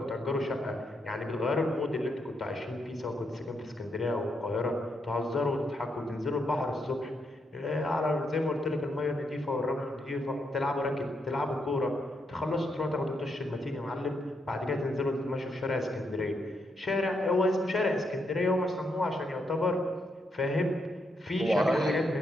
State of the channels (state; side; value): normal; both; correlation 0.79